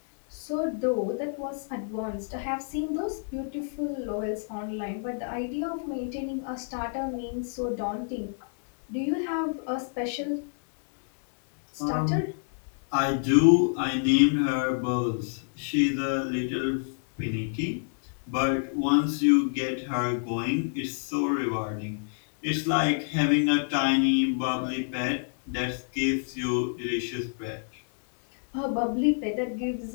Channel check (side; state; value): right; silent; digital silence